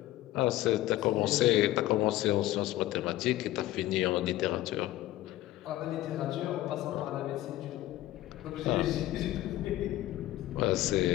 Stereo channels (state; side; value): quieter; right; 15.5 dB